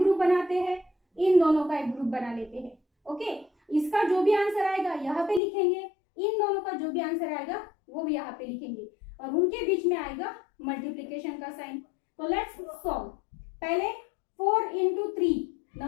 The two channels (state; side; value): drops out; right; at 5.4 s